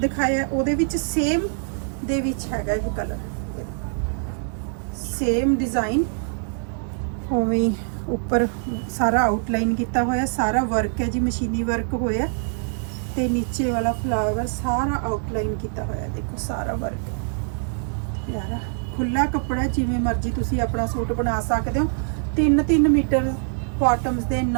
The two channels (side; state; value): left; silent; 63 dB below the other